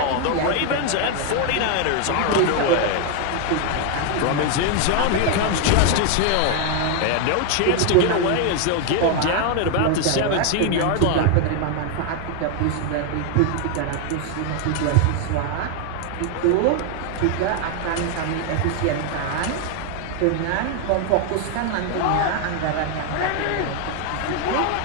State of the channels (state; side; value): different; both; correlation 0.01